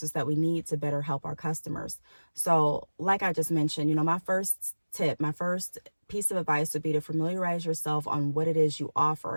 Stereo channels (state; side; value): inverted; both; correlation -1.00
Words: that we need to better help our customers. So like I just mentioned, my first tip, my first piece of advice would be to familiarize yourself on what it is you